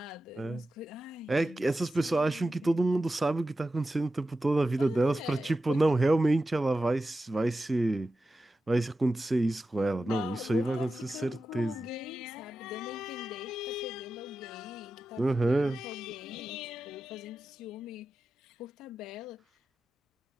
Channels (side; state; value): both; normal; correlation 0.92